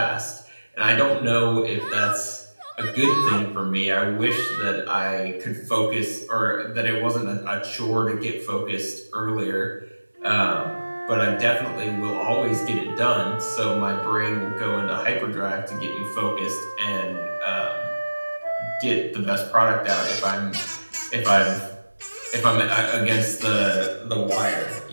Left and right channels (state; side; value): inverted; both; correlation -1.00